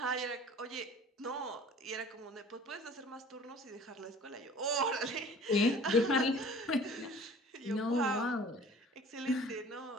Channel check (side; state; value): both; normal; correlation 0.47